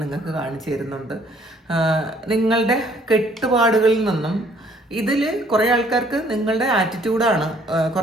നിങ്ങൾക്ക് കാണിച്ചു തരുന്നുണ്ട്. നിങ്ങളുടെ കെട്ടുപാടുകളിൽ നിന്നും ഇതിൽ കുറേ ആൾക്കാർക്ക് നിങ്ങളുടെ ആറ്റിറ്റ്യൂഡാണ്,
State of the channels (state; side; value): normal; both; correlation 0.61